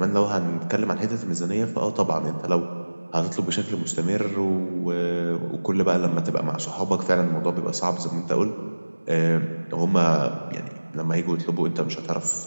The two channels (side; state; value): both; inverted; correlation -1.00